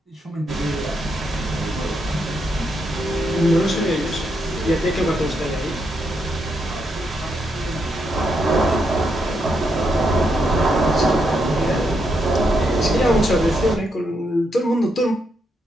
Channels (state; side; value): normal; both; correlation 0.80